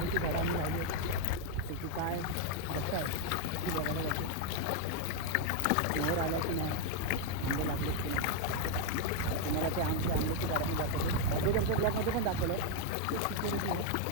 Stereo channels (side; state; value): both; different; correlation 0.01